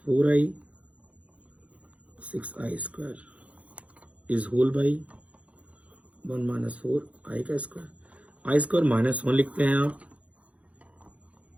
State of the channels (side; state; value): left; late; 0.065 ms